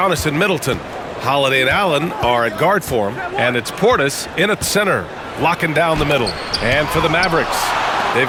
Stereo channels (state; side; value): identical; both; correlation 1.00